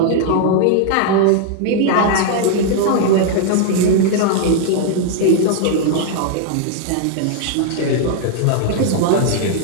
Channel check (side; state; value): both; different; correlation 0.00